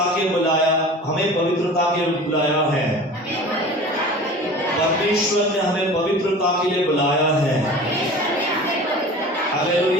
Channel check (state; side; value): normal; both; correlation 0.39